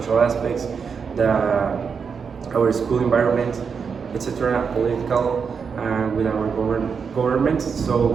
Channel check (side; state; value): left; quieter; 6.0 dB